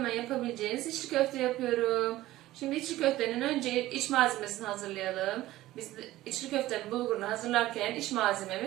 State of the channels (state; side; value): quieter; left; 16.1 dB